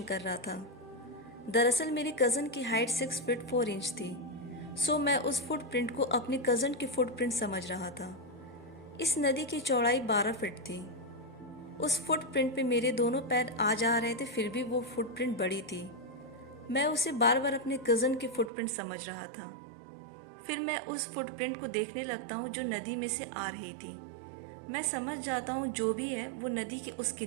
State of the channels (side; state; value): left; drops out; at 18.5 s